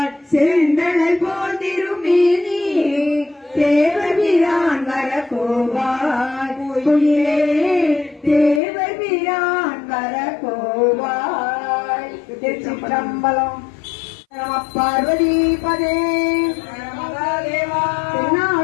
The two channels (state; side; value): drops out; right; at 8.6 s